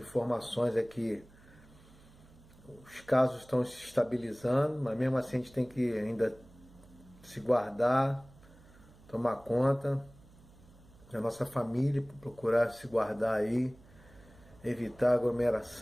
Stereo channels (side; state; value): right; noise; hum, 24 dB below the sound